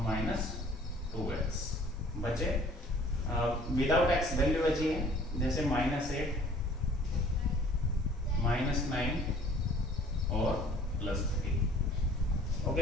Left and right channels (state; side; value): normal; both; correlation 0.53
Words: माइनस 2x बचे। विदाउट x वैल्यू बची है, जैसे माइनस 8 माइनस 9 और प्लस 3।